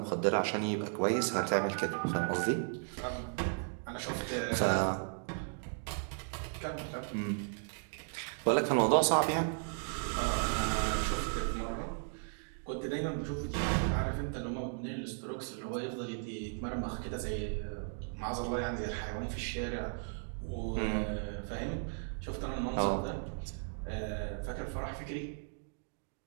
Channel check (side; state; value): left; silent; 54 dB below the other